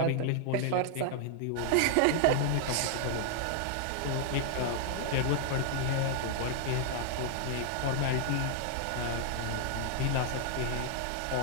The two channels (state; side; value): different; both; correlation 0.00